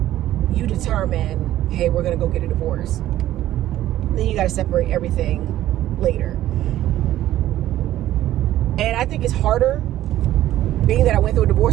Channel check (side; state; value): left; quieter; 13.6 dB